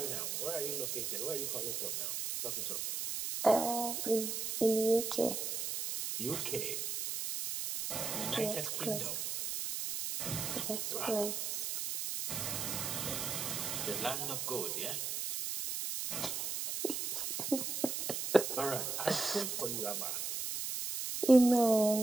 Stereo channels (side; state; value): right; noise; hiss, 2 dB below the sound